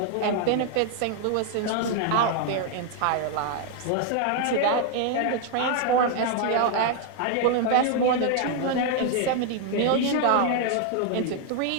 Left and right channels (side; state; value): both; different; correlation 0.00